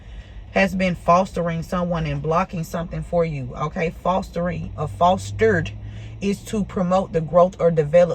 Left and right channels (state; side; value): identical; both; correlation 1.00